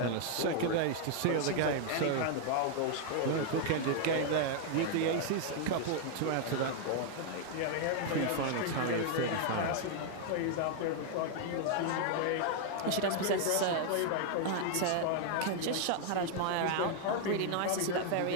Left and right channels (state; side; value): different; both; correlation 0.00